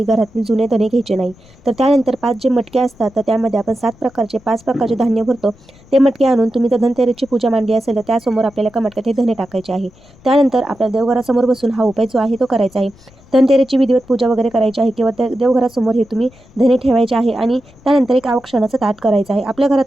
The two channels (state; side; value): noise; left; rumble, 26 dB below the sound